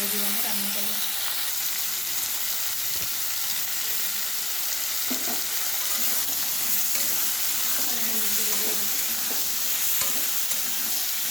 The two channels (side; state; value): right; noise; hum, 29 dB below the sound